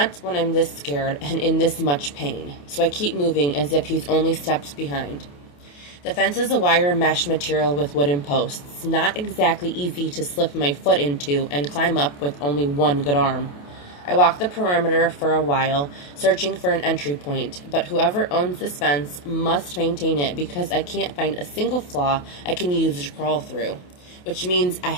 when I'm this scared and in this much pain. So I keep moving as if he's only steps behind. The fence is a wire mesh material with wooden posts, not exactly easy to slip my foot into and climb up with only one good arm. I walk the perimeter for a while, searching for an entry point, but whoever owns this fence must maintain it because I can't find a single flaw I can use to crawl through, which means I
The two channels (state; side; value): late; right; 28 ms